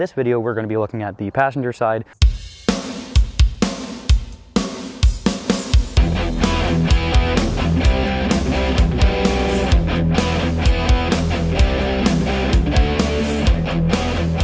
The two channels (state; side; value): identical; both; correlation 1.00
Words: video, we're going to be looking at the passenger side.